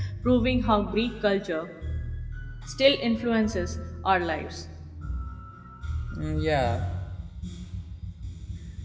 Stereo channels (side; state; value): both; identical; correlation 1.00